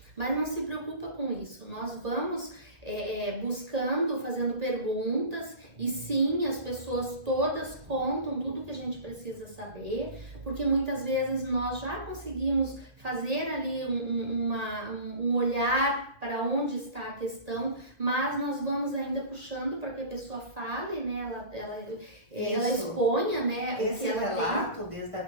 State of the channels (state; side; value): late; left; 1.7 ms